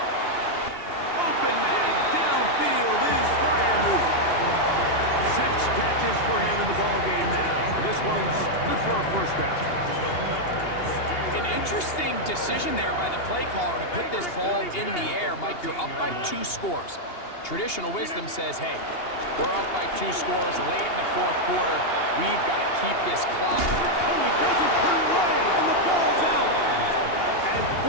Open man downfield is Freiermuth. 6 catches for him in the ballgame now. And this one's good for a 1st down. An interesting decision there by the play caller to put this ball in the air. Mike, you're up by 2 scores. Traditional wisdom says, hey, we're up by 2 scores late in the 4th quarter. We've got to keep this clock. Oh, he doesn't put it away, and the ball's out. And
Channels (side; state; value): right; late; 2.8 ms